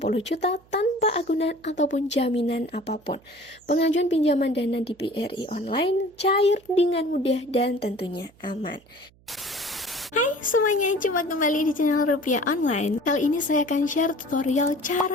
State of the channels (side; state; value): right; noise; hum, 30 dB below the sound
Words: juta tanpa agunan ataupun jaminan apapun. Pengajuan pinjaman dana di BRI Online cair dengan mudah dan tentunya aman. Hai semuanya, jumpa kembali di channel Rupiah Online. Kali ini saya akan share tutorial